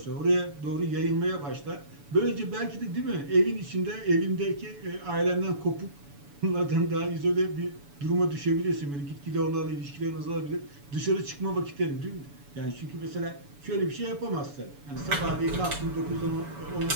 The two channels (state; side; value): late; left; 7.0 ms